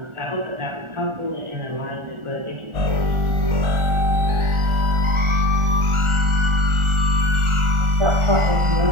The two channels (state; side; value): late; left; 1.4 ms